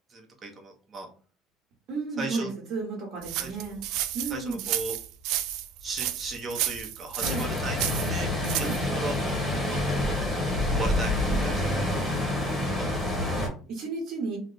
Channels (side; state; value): both; normal; correlation 0.50